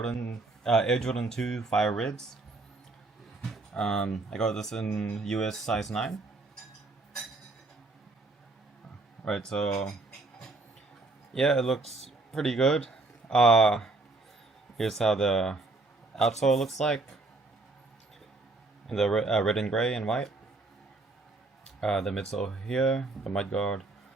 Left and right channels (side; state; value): left; quieter; 3.3 dB